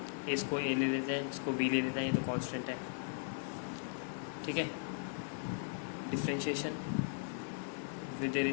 इसको ए ले लेते हैं, इसको बी ले लेते हैं, ये तो कॉन्स्टेंट है, ठीक है। Differentiation with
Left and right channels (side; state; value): right; silent; 52 dB below the other